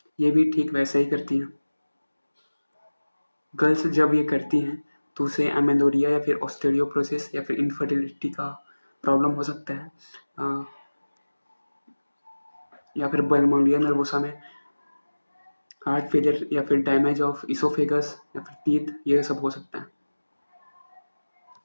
ये भी ठीक वैसा ही करती हैं। गर्ल्स जब ये करती हैं तो उसे एमेनोरिया या फिर ऑस्टियोपोरोसिस या फिर इनफर्टिलिटी का प्रॉब्लम हो सकता है। या फिर बुलिमिया नर्वोसा में हार्ट फेलियर या फिर डैमेज ऑफ इसोफेगस या फिर टीथ, ये सब हो सकता है।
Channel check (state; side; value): inverted; both; correlation -1.00